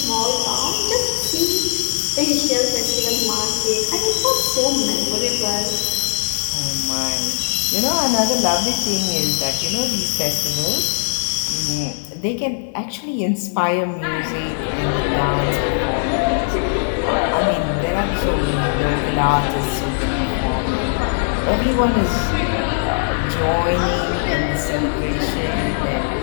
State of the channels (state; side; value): silent; right; digital silence